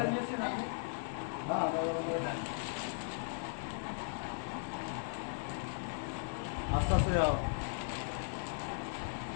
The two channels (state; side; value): silent; right; digital silence